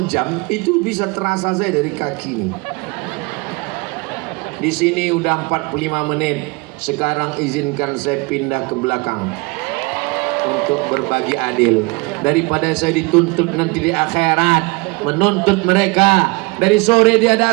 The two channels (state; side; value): quieter; left; 26.9 dB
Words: jam, itu bisa terasa saya dari kaki nih. Di sini udah 45 menit. Sekarang izinkan saya pindah ke belakang untuk berbagi adil. Daripada saya dituntut nanti di akhirat menuntut mereka. Dari sore dia